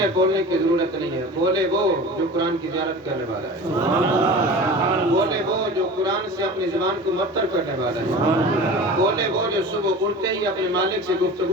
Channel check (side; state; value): both; normal; correlation 0.36